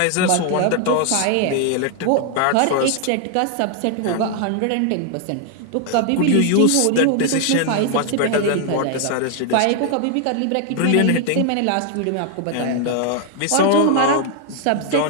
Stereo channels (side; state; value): both; different; correlation 0.00